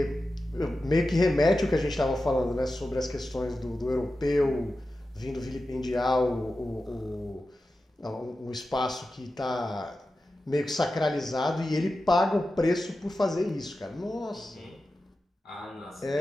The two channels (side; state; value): both; normal; correlation 0.93